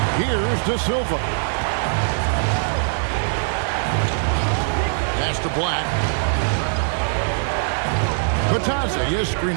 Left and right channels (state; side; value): silent; left; 65 dB below the other